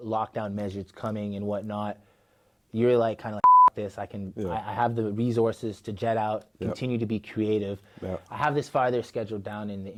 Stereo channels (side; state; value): both; identical; correlation 1.00